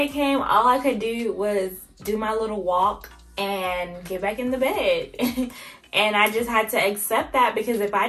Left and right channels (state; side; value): identical; both; correlation 1.00